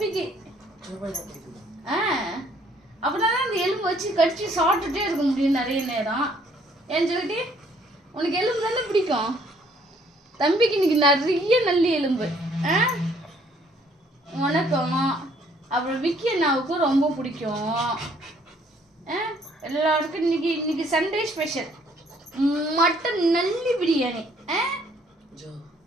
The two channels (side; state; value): both; normal; correlation 0.63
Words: அப்படின்னா தான் அந்த எலும்பு வச்சு கடிச்சு சாப்பிட்டுட்டே இருக்க முடியும் நிறைய நேரம். ஏன்னு சொல்லிட்டு உனக்கு எலும்பு தானே பிடிக்கும். தம்பிக்கு இன்னைக்கு நிறைய நல்லி எலும்பு. உனக்கும் அப்புறம் விக்கி அண்ணாவுக்கும் ரொம்ப பிடிக்கும். எல்லாருக்கும் இன்னைக்கு சண்டே ஸ்பெஷல் மட்டன் நல்லி பிரியாணி.